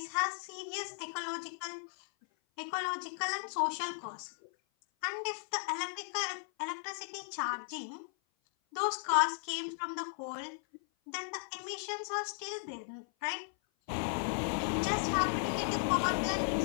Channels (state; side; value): silent; right; 54 dB below the other